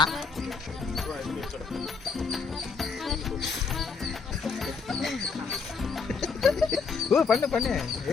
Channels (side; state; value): right; quieter; 5.2 dB